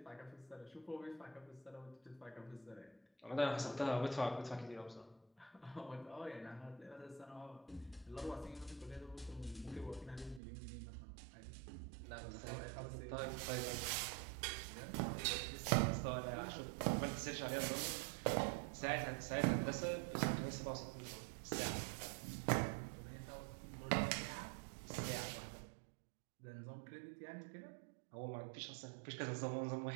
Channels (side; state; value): left; drops out; at 10.4 s